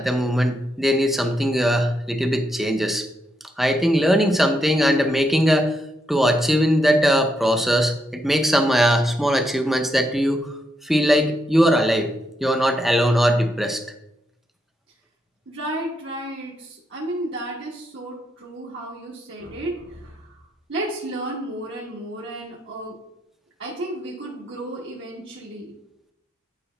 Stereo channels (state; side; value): normal; both; correlation 0.80